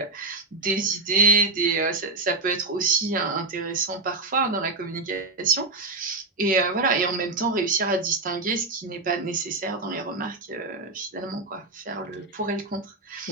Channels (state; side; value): quieter; left; 3.4 dB